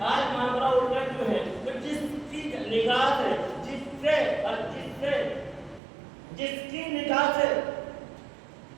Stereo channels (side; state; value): left; drops out; at 5.8 s